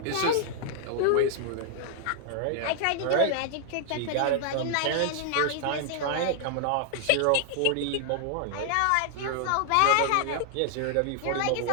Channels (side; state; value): both; different; correlation 0.00